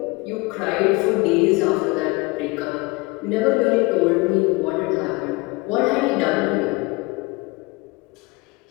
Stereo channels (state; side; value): quieter; right; 24.7 dB